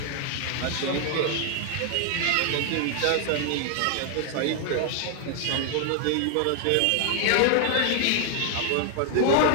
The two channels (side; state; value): both; different; correlation 0.00